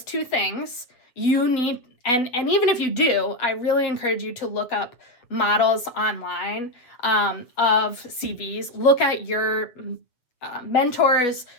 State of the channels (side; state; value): right; late; 7.8 ms